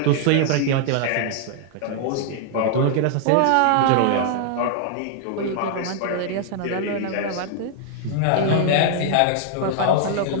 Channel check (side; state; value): both; different; correlation 0.00